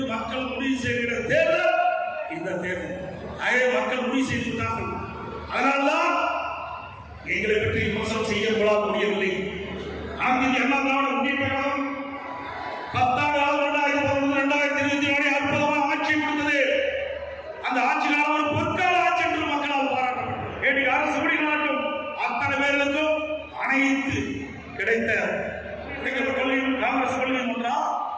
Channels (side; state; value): both; identical; correlation 1.00